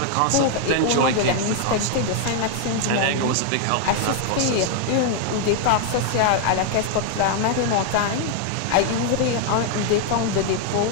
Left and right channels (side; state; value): both; different; correlation 0.00